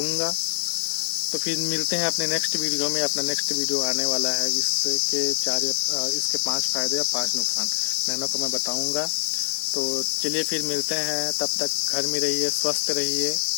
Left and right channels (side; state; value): right; silent; digital silence